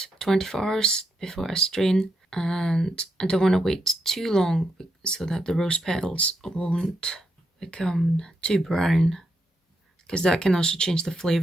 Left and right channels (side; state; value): both; normal; correlation 0.81